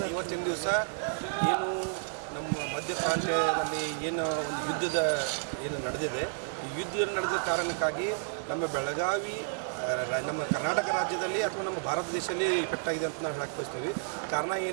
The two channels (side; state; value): left; silent; digital silence